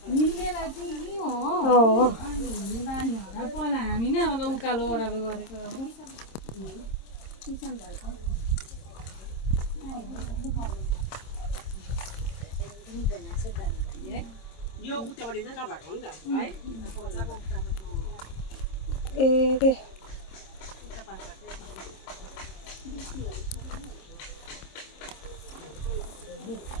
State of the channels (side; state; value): right; late; 26 ms